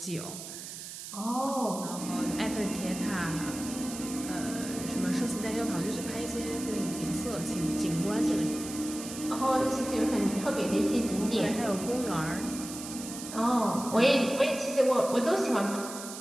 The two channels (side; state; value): right; noise; hiss, 10 dB below the sound